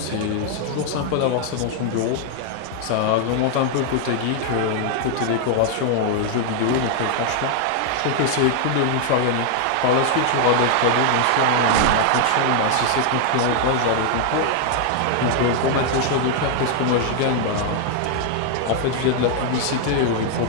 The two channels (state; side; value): different; both; correlation 0.00